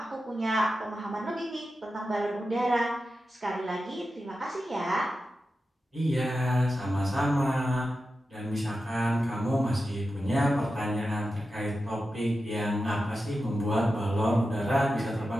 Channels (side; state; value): both; normal; correlation 0.91